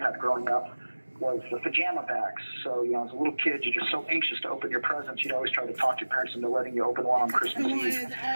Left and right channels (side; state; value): both; inverted; correlation -1.00